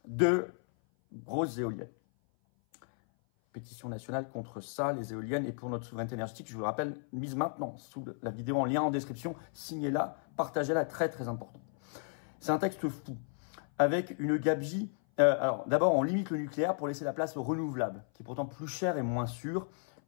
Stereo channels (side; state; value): right; silent; 55 dB below the other